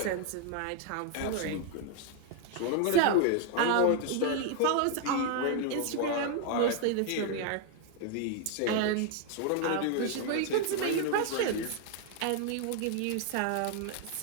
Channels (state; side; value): different; both; correlation 0.00